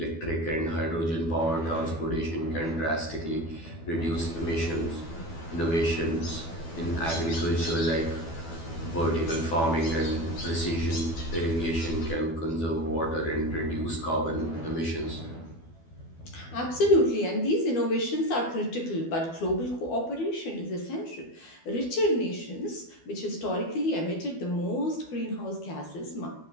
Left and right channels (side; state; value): right; late; 12 ms